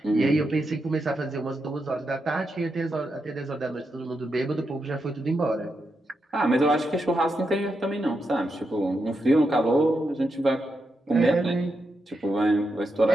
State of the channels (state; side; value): normal; both; correlation 0.85